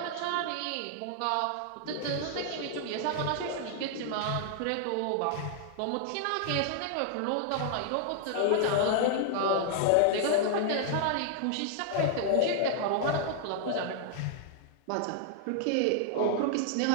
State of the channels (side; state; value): both; different; correlation -0.01